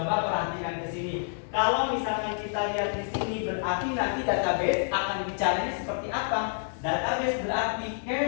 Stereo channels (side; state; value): right; silent; digital silence